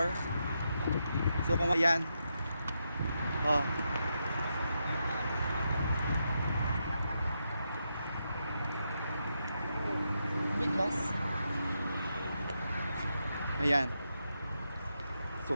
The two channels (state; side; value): inverted; both; correlation -0.84